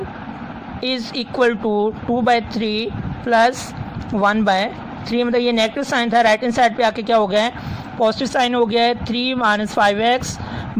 is equal to 2/3 plus 1/3। मतलब ये नेगेटिव साइन था, राइट हैंड साइड पे आके क्या हो गया है, पॉजिटिव साइन हो गया है। 3 -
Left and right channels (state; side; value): identical; both; correlation 1.00